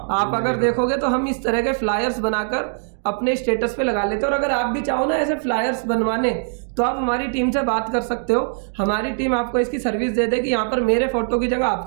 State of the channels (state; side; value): silent; left; digital silence